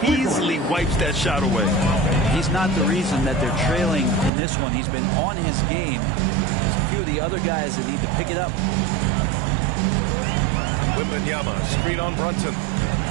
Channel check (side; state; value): left; drops out; at 4.3 s